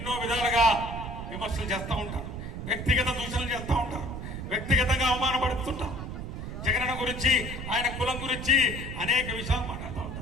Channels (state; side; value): noise; right; rumble, 7 dB below the sound